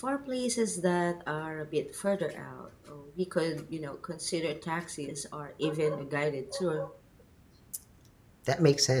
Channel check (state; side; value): identical; both; correlation 1.00